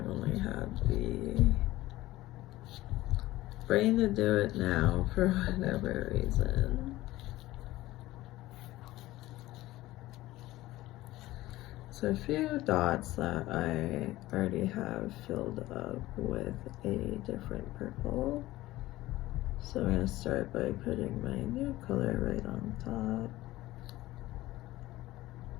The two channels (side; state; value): right; quieter; 17.0 dB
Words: only had the brain to do it now for whatever reason. So a few dots that I already have filled up with a different purple. So I'm going to start by putting my new color right on top.